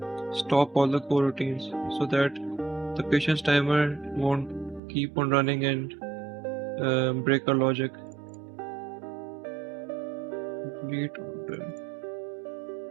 stop all the coroutines so that the patient's timer won't keep on running and break our logic. Complete order.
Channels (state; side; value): drops out; left; at 4.8 s